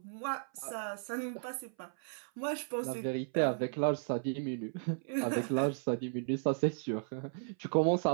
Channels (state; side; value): silent; left; 54 dB below the other